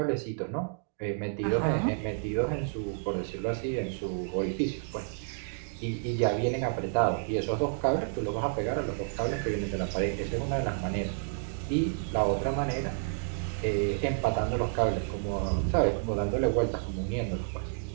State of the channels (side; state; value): left; silent; digital silence